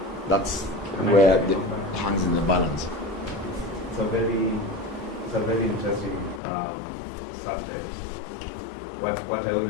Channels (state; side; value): drops out; right; at 6.4 s